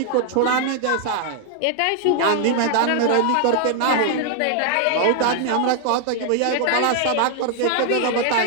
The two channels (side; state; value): both; different; correlation 0.00